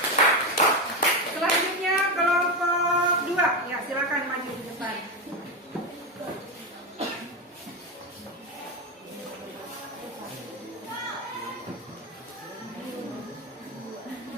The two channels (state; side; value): normal; both; correlation 0.13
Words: Selanjutnya kelompok 2. Ya, silakan maju di depan.